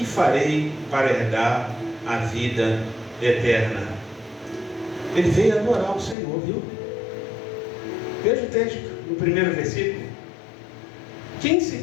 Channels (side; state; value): right; drops out; at 6.2 s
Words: farei para herdar a vida eterna? Ele veio adorar o Senhor, viu? Veja o texto, no primeiro versículo. Quem se